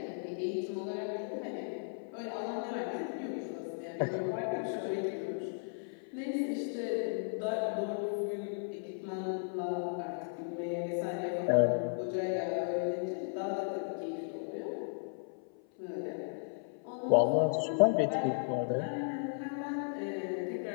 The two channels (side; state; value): right; silent; 54 dB below the other